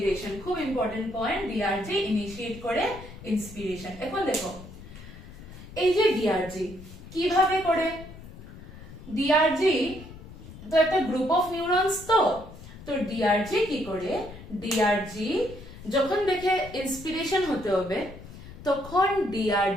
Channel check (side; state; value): left; noise; rumble, 16 dB below the sound